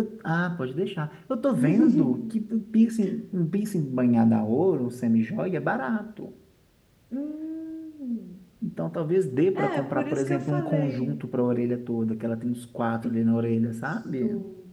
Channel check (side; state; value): both; identical; correlation 1.00